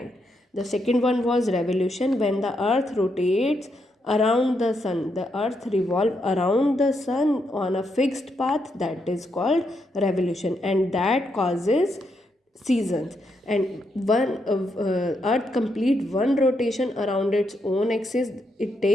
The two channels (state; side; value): normal; both; correlation 0.80